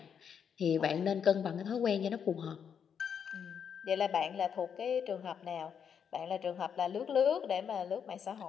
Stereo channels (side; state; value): right; quieter; 7.5 dB